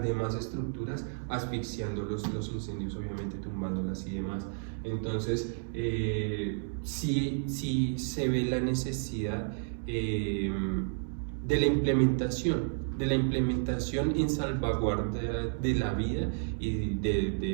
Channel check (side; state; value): left; silent; digital silence